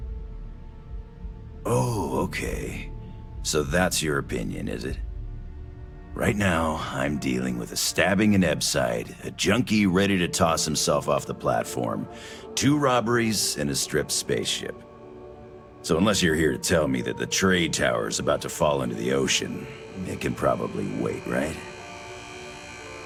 Okay. So that's your opinion, is it? Right now, I'm dealing with a stabbing in Ebside, a junkie ready to toss himself off the platform, 2 robberies, and a stripped spaceship. So unless you're here to tell me that the trade tower is about to fall into the ocean, it can probably wait, right?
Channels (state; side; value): identical; both; correlation 1.00